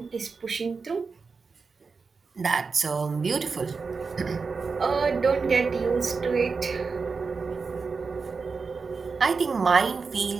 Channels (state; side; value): quieter; left; 4.8 dB